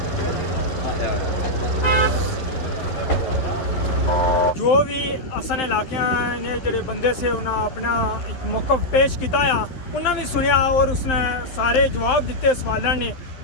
जो भी असन इलाके ने जेडे बंदे से उन्हें अपना एक मौकफ पेश किया, उन्हें भी सुनिया और उसने सारे जवाब दिते सवालों ने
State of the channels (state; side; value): late; right; 11 ms